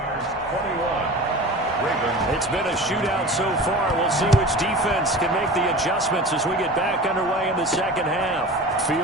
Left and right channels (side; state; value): both; normal; correlation 0.36